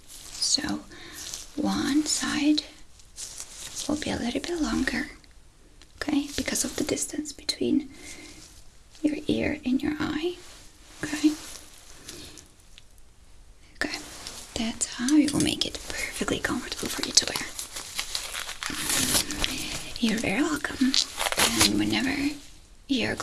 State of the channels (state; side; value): identical; both; correlation 1.00